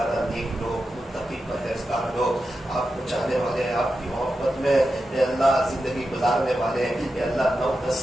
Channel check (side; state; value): both; normal; correlation 0.90